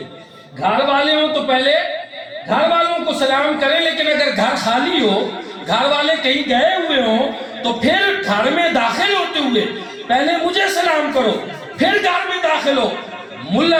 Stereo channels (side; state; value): both; identical; correlation 1.00